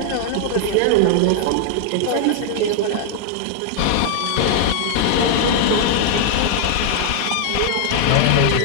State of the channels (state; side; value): different; both; correlation 0.00